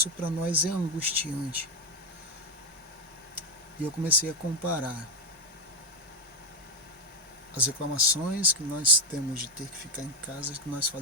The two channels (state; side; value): normal; both; correlation 0.07